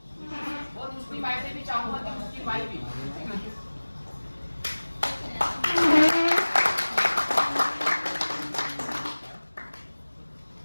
और मुस्लिम भाई से भी चाहूँगा कि मुस्लिम भाई भी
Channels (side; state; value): both; inverted; correlation -1.00